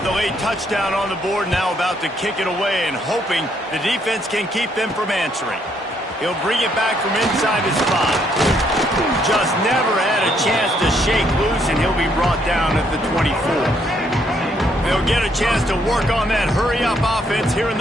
the late touchdown on the board, now about to kick it away and hoping the defense can keep them from answering. He'll bring it back from inside his 5. Just never had a chance to shake loose, and he'll be brought down at the 24. They'll get a chance to work on that hurry-up offense here in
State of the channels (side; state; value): both; normal; correlation 0.71